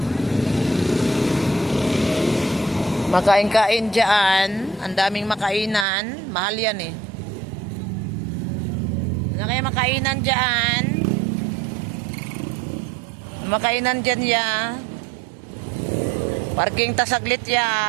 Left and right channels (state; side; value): drops out; left; at 5.9 s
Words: Makain-kain dyan. Ang daming makainan. Mahal yan eh. Ano kaya makainan dyan? Makainan dyan ya. Parking tasaglit